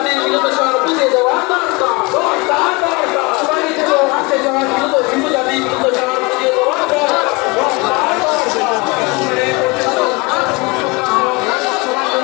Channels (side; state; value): right; quieter; 26.7 dB